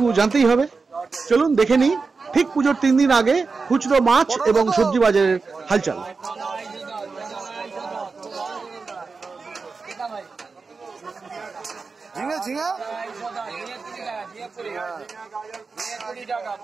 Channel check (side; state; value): left; quieter; 4.5 dB